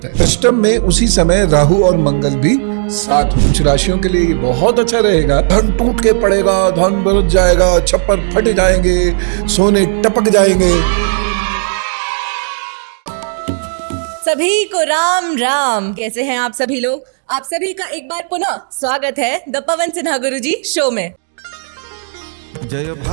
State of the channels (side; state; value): left; silent; digital silence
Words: है। अष्टम में उसी समय राहु और मंगल भी साथ। कुछ राशियों के लिए बहुत अच्छा रहेगा। धन टूट के पड़ेगा, धन बरस जाएगा, छप्पर फट जाएंगे, सोने टपक जाएंगे। सभी को राम राम। कैसे हैं आप सभी लोग? आप सभी का एक बार पुनः स्वागत है the Pawan Sinha Guruji show में। जय